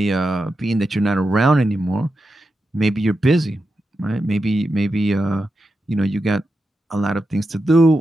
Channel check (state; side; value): normal; both; correlation 0.88